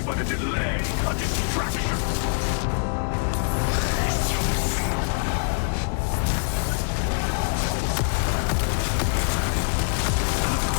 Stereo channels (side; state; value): right; silent; digital silence